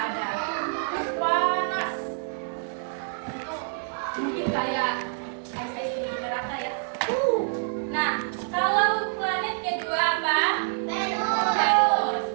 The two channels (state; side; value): silent; left; 60 dB below the other